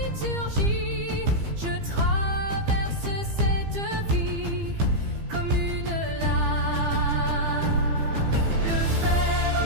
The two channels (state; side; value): late; left; 15 ms